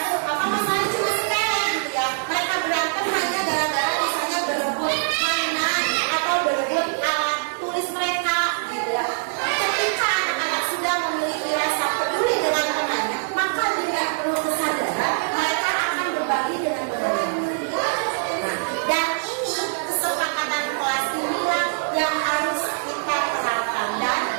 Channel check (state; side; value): silent; left; digital silence